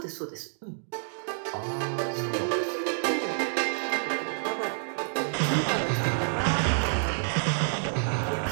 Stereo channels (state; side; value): silent; left; digital silence